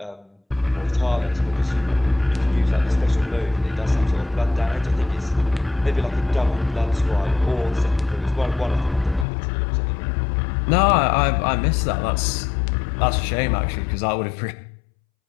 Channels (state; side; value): drops out; right; at 9.2 s